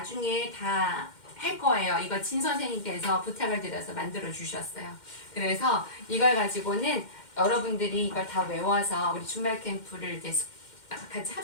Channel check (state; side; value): late; right; 2.1 ms